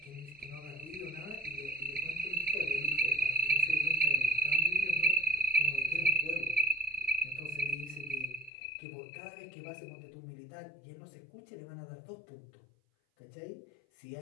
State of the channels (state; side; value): drops out; right; at 8.5 s